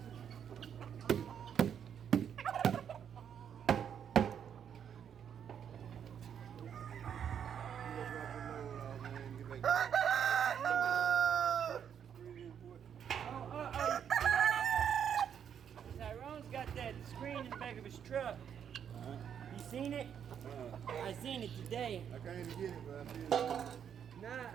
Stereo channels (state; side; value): quieter; left; 8.4 dB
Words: Tyrone's got that screen in the back of his truck. You seen it? I seen it today. I can't even get it, but I see it.